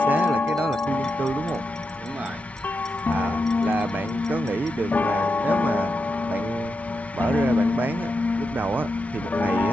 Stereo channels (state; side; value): normal; both; correlation 0.87